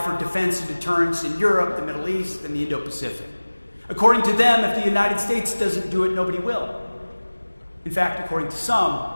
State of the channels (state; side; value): inverted; both; correlation -1.00